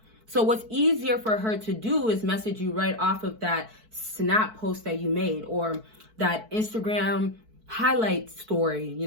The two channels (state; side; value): late; left; 4.6 ms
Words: So what's easier for her to do is message you right off of that snap post that you made, or that Instagram highlight story, you